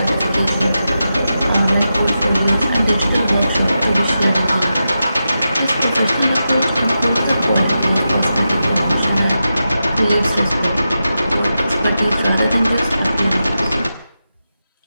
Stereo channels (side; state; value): both; inverted; correlation -0.89